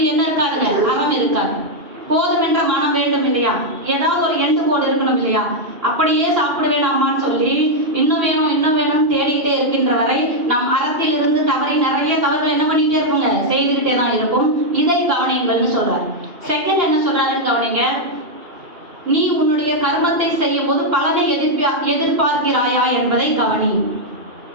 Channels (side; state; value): left; late; 2.9 ms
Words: என்ன இருக்காதுங்க, அறம் இருக்காது. போதும் என்ற மனம் வேண்டும் இல்லையா, ஏதாவது ஒரு எண்டு கோடு இருக்கணும் இல்லையா. அப்படியே சாப்பிடுவேன் அம்மான்னு சொல்லி இன்னும் வேணும் இன்னும் வேணும்னு தேடிக்கிட்டே இருக்கின்ற வரை நாம் அறத்தில் இருந்து தவறி நிறைய தவறுகள் என்ன பண்ணிக்கிட்டே இருப்போங்க, செய்துக்கிட்டே தான் இருக்கும். இதை கவனிங்கள்னு சொல்றாரு. செகண்ட் என்ன சொல்றாருன்னு கவனிங்க. நீ உன்னுடைய கர்மத்தை செய்யும் போது பலனை எதிர்பார்க்கிறாயா என்பதை கவனி.